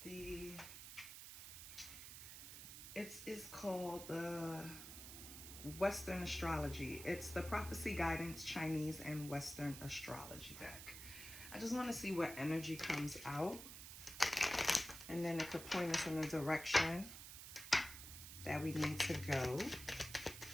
the... It's called the Western Astrology. It's the Prophecy Guidance Chinese and Western Astrology deck. I just want to see what energy comes out, and then it could point us in the direction that we need to go.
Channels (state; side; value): noise; right; hiss, 11 dB below the sound